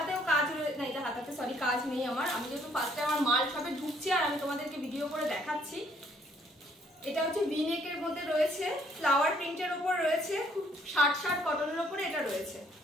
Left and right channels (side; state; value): both; normal; correlation 0.65